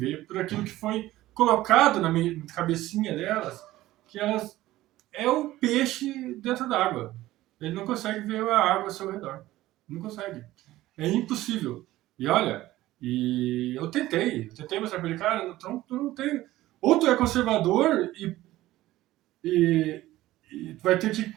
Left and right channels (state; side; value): quieter; left; 16.1 dB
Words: por aquilo que foi colocado na cabecinha delas, que elas é o peixe dentro d'água. Ele não consegue ver a água ao seu redor. Não consegue. É impossível. E olha, eu tentei mostrar para ele, cara, tu não tem. Ou tu é conservador e vai ter